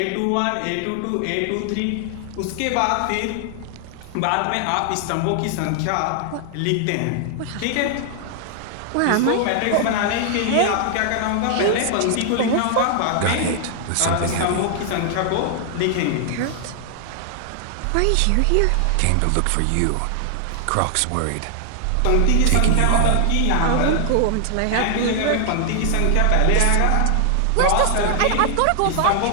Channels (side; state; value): both; different; correlation 0.00